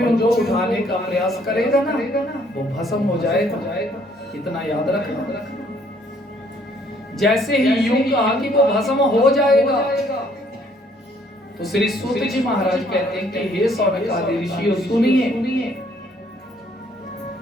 उनको उठाने का प्रयास करेगा ना, वो भस्म हो जाएगा। इतना याद रखना। जैसे ही यूं कहा कि वो भस्म हो जाएगा, तो श्री सूत जी महाराज कहते हैं कि हे सौनक आदि ऋषियों सुनिए।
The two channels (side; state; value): both; normal; correlation 0.63